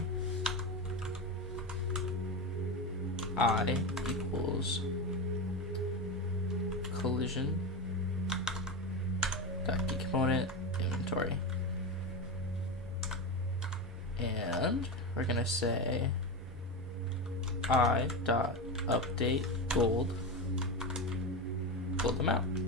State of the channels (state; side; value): normal; both; correlation 0.17